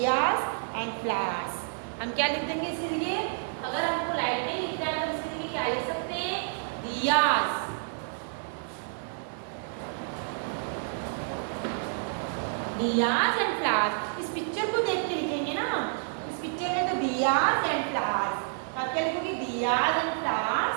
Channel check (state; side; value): silent; left; digital silence